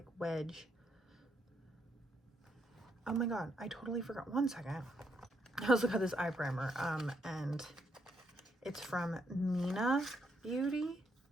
wedge. Oh my god, I totally forgot. One second. I also got this eye primer, and it's from Mina Beauty,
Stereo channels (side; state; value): both; normal; correlation 0.76